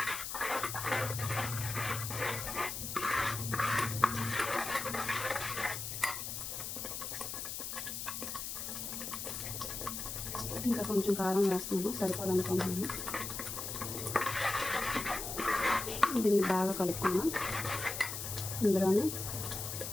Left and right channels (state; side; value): noise; left; hiss, 5 dB below the sound